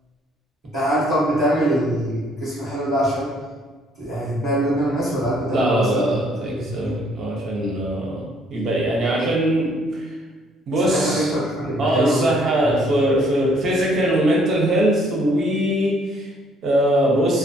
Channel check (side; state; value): both; normal; correlation 0.64